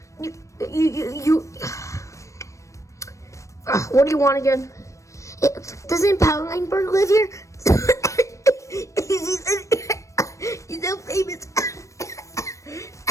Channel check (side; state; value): right; late; 0.15 ms